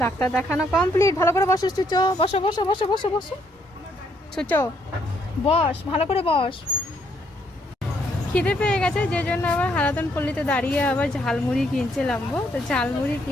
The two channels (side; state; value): both; normal; correlation 0.71